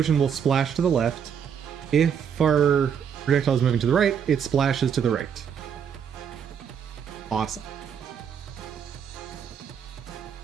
will splash to the left. If our projectile is moving to the right, it splashes to the right. Awesome.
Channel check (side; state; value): left; quieter; 7.7 dB